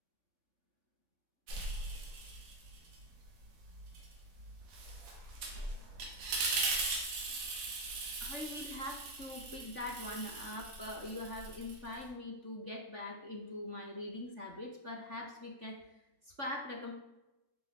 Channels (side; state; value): left; late; 4.1 ms